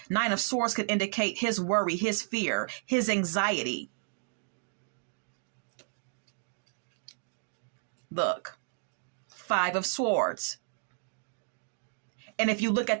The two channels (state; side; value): silent; left; digital silence